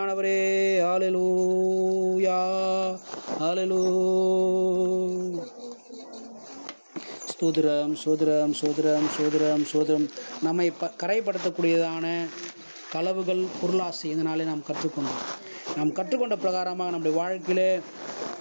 ஹல்லேலூயா ஹல்லேலூயா. சோதரம் சோதரம் சோதரம் சோதரம் சோதரம். நம்மை கரைப்படுத்தக்கூடியதான களவுகள், பொருளாசை இதனாலே நாம் கற்றுக்கொண்டோம். நாம் கற்றுக்கொண்ட பிரகாரமாக நம்முடைய வாழ்க்கையிலே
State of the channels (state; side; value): inverted; both; correlation -1.00